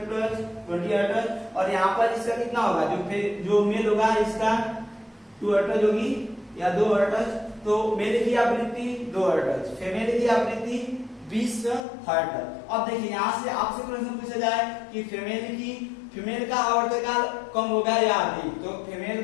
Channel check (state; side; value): drops out; right; at 11.9 s